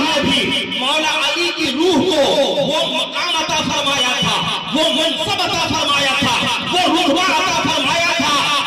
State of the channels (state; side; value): identical; both; correlation 1.00